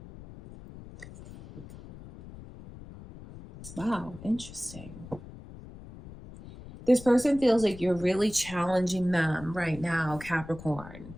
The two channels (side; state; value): left; noise; rumble, 16 dB below the sound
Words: Wow, interesting. This person feels like you're really challenging them right now, Capricorn,